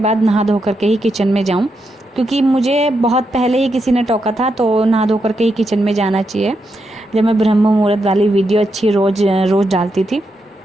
नहा धो करके ही किचन में जाऊँ, क्योंकि मुझे बहुत पहले ही किसी ने टोका था तो नहा धो करके ही किचन में जाना चाहिए। जब मैं ब्रह्म मुहूर्त वाली वीडियो अच्छी रोज़ डालती थी,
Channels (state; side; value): normal; both; correlation 0.83